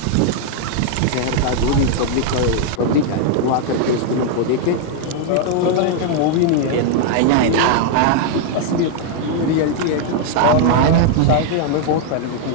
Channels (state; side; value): different; both; correlation 0.00